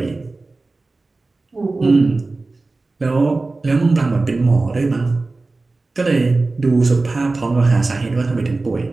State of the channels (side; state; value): left; quieter; 3.4 dB